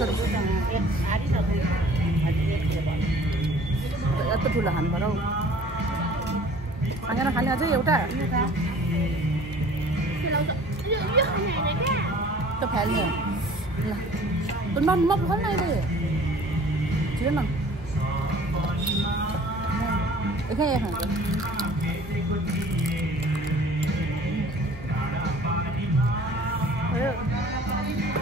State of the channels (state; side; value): normal; both; correlation 0.49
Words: यत्रो ठुलो खानु पर्यो खाना खाने अझै एउटा त्यो फाल्ने ल म खोल्न अहिले छिटो न एकै खान्छ